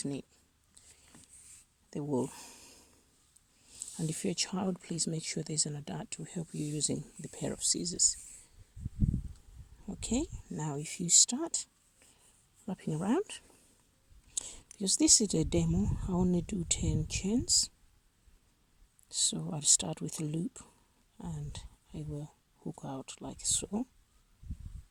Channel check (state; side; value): identical; both; correlation 1.00